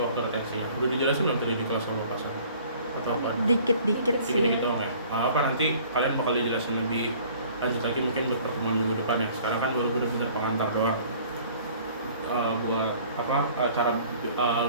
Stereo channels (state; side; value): inverted; both; correlation -0.52